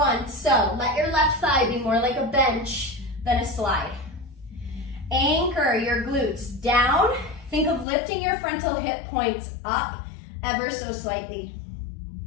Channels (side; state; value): right; drops out; at 7.9 s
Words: so let your left thigh be more like a bench then a slide. Anchor your glutes down. Think of lifting your frontal hip points up ever so slightly.